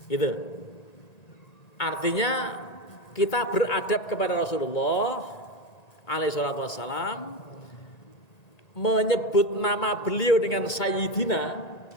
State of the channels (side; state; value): right; late; 1.9 ms